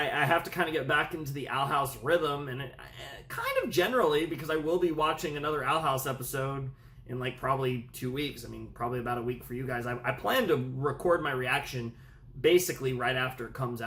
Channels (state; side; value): identical; both; correlation 1.00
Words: have to kind of get back into the Owl House rhythm, and kind of generally, because I will be watching another Owl House episode in like probably 2 weeks. I mean, probably about a week for you guys. I plan to record my reaction basically right after it comes